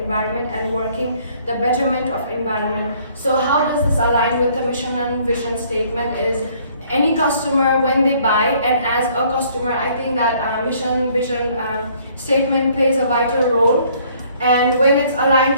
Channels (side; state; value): both; inverted; correlation -0.61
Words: and working the betterment of environment. So how does this align with the mission and vision statement is any customer when they buy, and as a customer I think that mission vision statement plays a vital role, and when it's aligned